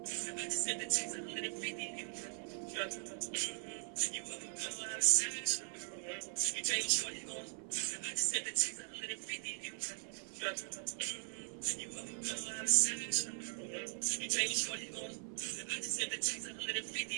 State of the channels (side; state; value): left; silent; 51 dB below the other